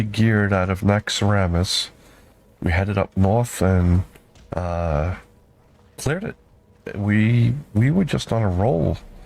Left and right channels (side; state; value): both; identical; correlation 1.00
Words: geared out of Naxxramas, we headed up north and cleared it. We were just on a roll.